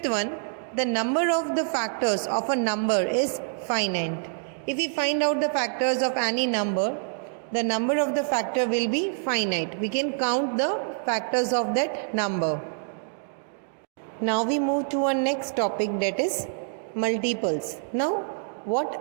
one, the number of the factors of a number is finite. If we find out the factors of any number, the number of the factor will be finite. We can count the factors of that number. Now we move to our next topic, that is multiples. Now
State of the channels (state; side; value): silent; left; digital silence